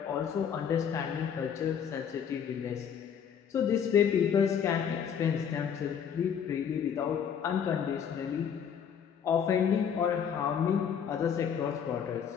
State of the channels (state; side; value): quieter; right; 7.8 dB